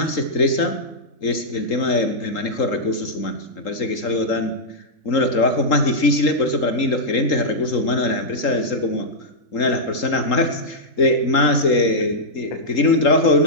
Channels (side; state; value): right; late; 3.8 ms